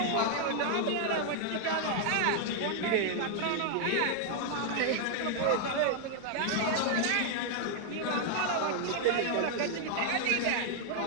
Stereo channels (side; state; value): both; different; correlation 0.00